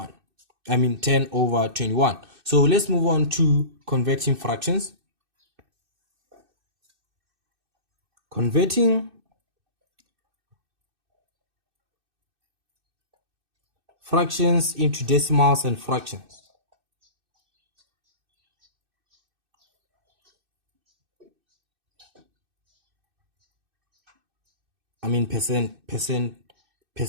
I mean 10/21. So let's move on to converting fractions. Converting fractions into decimals and fractions. I mean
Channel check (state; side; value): late; left; 2.6 ms